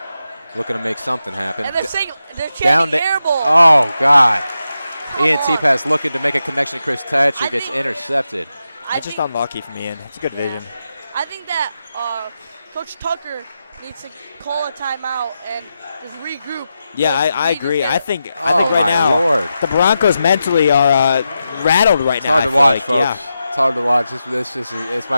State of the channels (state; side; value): inverted; both; correlation -0.89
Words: Looking to make something happen. And they're chanting Down to air ball. Oh, God. Come Ian on. T-Pass looking to make a connection to Chris Thatcher. I Gets think- intercepted. I It's just think, unlucky from Ian. It's a good vision. I think that Coach Tucker needs to call a timeout and just regroup. Yeah, Because I we need to agree. get- I think Oh, right my now Lord. the Broncos mentally are rattled right It's now. hard I to feel watch, like. folks. Yeah. It's hard to watch. This